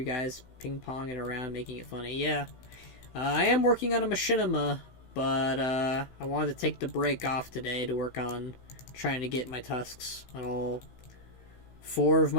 guys ping-ponging around, making it funny. Yeah. I am working on a machinima, but I wanted to take the break off today to work on trying to get my tusks on all 4 of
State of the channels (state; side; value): late; right; 16 ms